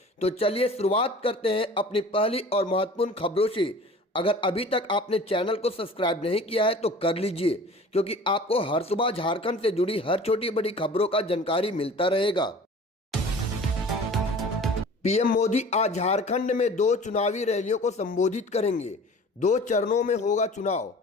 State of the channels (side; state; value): both; normal; correlation 0.43